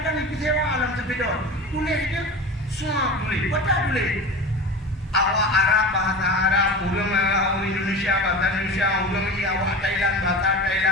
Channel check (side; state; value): both; normal; correlation 0.31